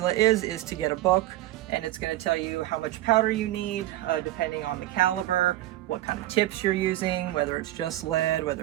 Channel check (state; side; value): quieter; left; 15.3 dB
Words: is to get a book, and it's going to tell you how much powder you need, depending on the caliber, what kind of tips you're using, whether it's just lead,